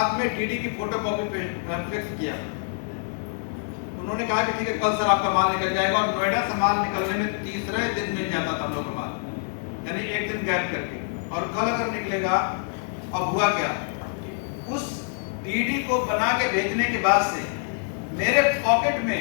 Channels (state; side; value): silent; right; 61 dB below the other